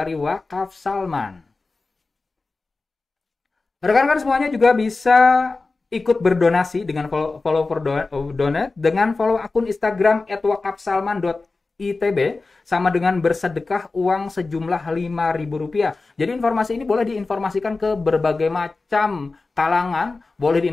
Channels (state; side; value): quieter; right; 3.7 dB